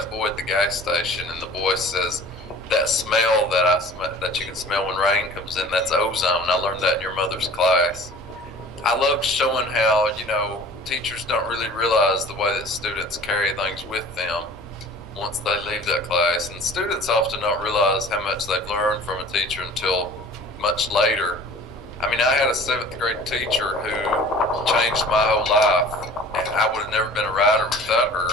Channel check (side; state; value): both; normal; correlation 0.45